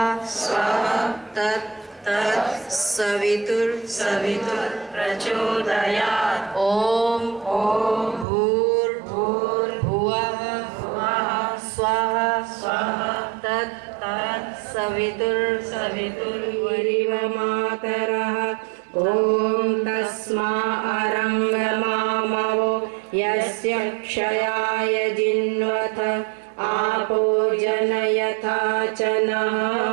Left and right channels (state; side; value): drops out; left; at 8.2 s